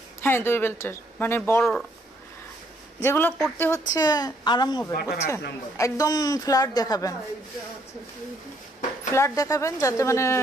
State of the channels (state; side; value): normal; both; correlation 0.69